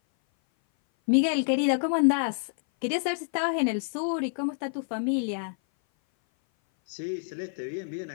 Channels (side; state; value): right; silent; 58 dB below the other